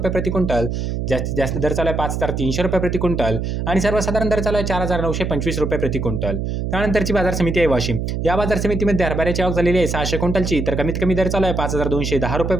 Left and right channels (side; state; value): right; noise; hum, 2 dB below the sound